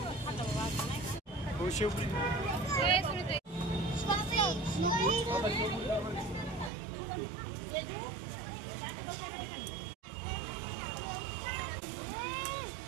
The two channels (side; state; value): left; drops out; at 6.7 s